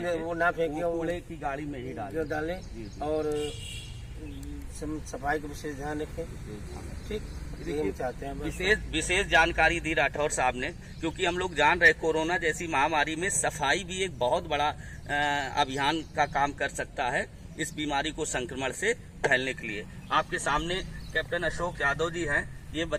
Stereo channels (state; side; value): identical; both; correlation 1.00